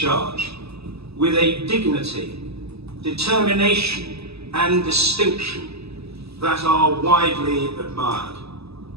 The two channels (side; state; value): left; late; 0.78 ms